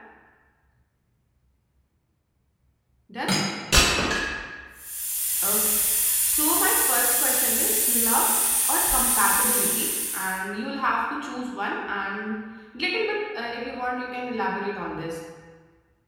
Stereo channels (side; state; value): both; identical; correlation 1.00